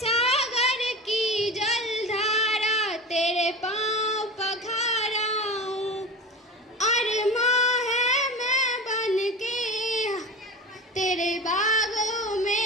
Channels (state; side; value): normal; both; correlation 0.30